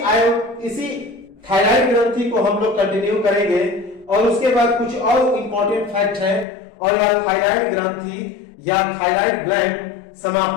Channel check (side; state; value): right; drops out; at 6.5 s